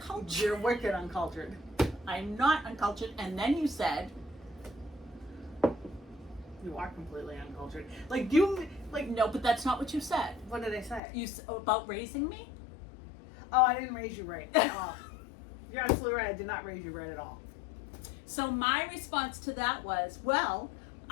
You're wicked uncultured. I'm not uncultured. And then you said, You are completely uncultured. Like, you, like, no, but that's not what you said. what did I say? About raising me? Oh, I didn't raise you right at all. You're absolutely right. I did not raise you right at all. So my response to that was, well,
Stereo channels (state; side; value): drops out; right; at 11.0 s